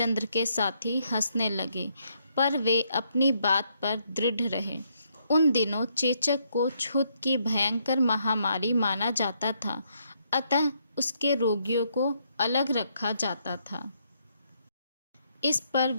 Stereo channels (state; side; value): inverted; both; correlation -0.74